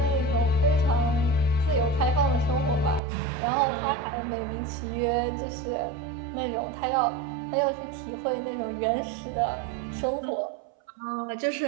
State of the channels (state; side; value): drops out; left; at 3.0 s